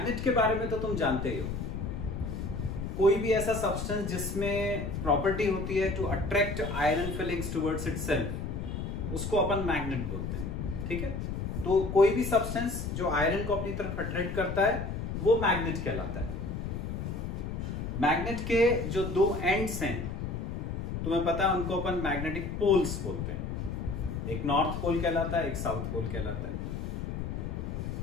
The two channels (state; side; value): noise; left; rumble, 4 dB below the sound